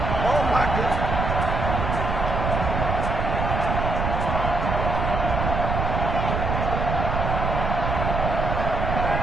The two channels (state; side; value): noise; right; rumble, 1 dB below the sound